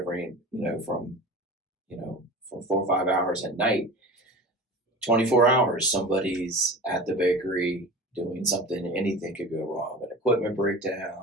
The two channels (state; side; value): normal; both; correlation 0.35